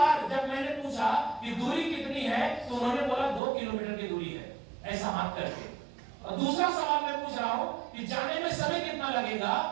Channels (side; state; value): left; drops out; at 3.4 s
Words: जब मैंने पूछा कि दूरी कितनी है तो उन्होंने बोला 2 किलोमीटर की दूरी है, ऐसा हाथ करके। और दूसरा सवाल मैं पूछ रहा हूं कि जाने में समय कितना लगेगा,